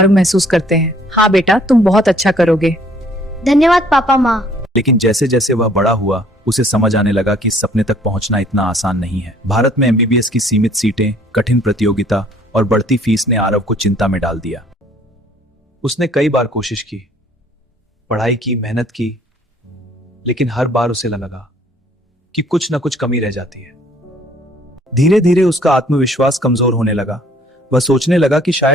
महसूस करते हैं। हाँ बेटा, तुम बहुत अच्छा करोगे। धन्यवाद पापा माँ। लेकिन जैसे जैसे वह बड़ा हुआ, उसे समझ आने लगा कि इस सपने तक पहुंचना इतना आसान नहीं है। भारत में एमबीबीएस की सीमित सीटें, कठिन प्रतियोगिता और बढ़ती फीस ने आरव को चिंता में डाल दिया। उसने कई बार कोशिश की, पढ़ाई की, मेहनत की, लेकिन हर बार उसे लगा कि कुछ न कुछ कमी रह जाती है। धीरे धीरे उसका आत्मविश्वास कमजोर होने लगा। वह सोचने लगा कि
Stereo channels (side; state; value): both; normal; correlation 0.59